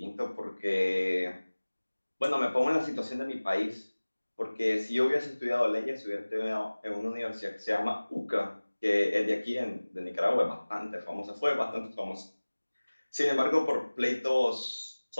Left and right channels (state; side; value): inverted; both; correlation -1.00